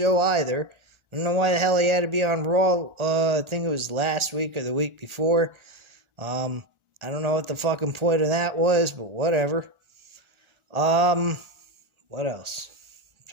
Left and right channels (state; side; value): late; left; 1.4 ms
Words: either. I don't know why the hell he had to be on Raw. I think it was last week or the week before. I don't know what the fucking point of that was, but whatever. What else? I'm